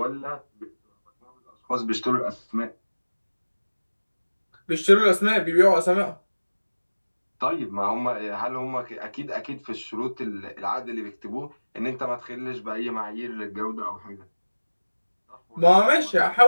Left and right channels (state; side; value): inverted; both; correlation -1.00